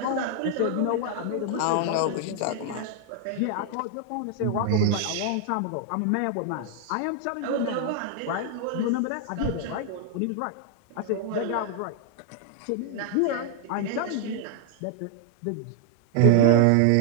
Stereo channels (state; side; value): different; both; correlation 0.00